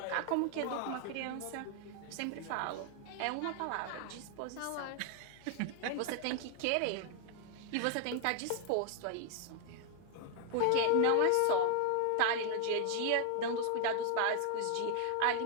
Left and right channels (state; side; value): different; both; correlation 0.00